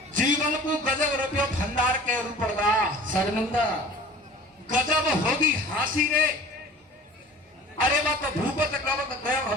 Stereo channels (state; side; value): normal; both; correlation 0.44